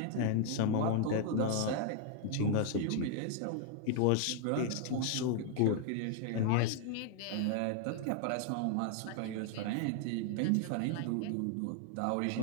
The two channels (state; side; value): different; both; correlation 0.00